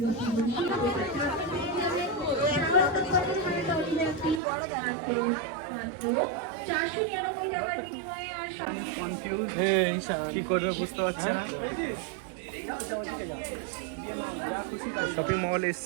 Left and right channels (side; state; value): left; drops out; at 4.4 s